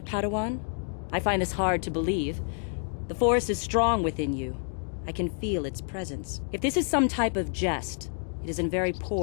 Padawan? I find this hard to believe. The Force is strong within you. I can feel its presence. If this is some type of jest, it is in very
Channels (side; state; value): right; silent; 59 dB below the other